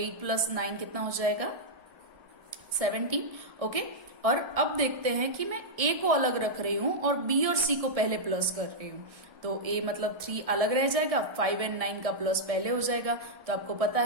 प्लस 9 कितना हो जाएगा 17। ओके, और अब देखते हैं कि मैं a को अलग रख रही हूं और b और c को पहले प्लस कर रही हूं, तो a मतलब 3 अलग रह जाएगा, 5 एंड 9 का प्लस पहले हो जाएगा। तो आपको पता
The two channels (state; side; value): late; left; 1.3 ms